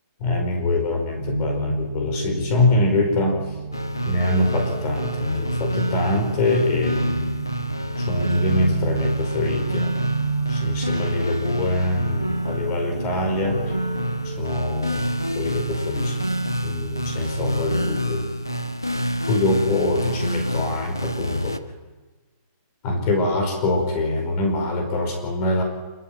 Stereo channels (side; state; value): both; inverted; correlation -0.61